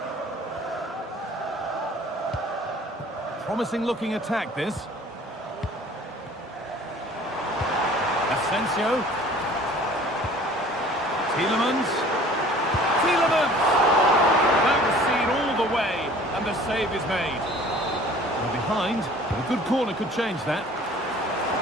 Promising looking attack, this. Asensio. Tielemans. That was seen all the way, and the save is made. Well, behind, but a good corner could change that.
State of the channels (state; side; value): normal; both; correlation 0.49